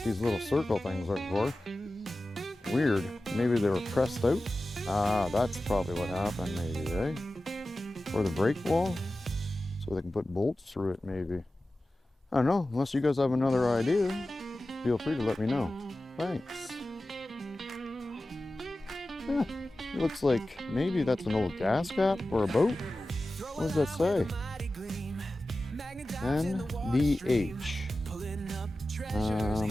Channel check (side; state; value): both; normal; correlation 0.95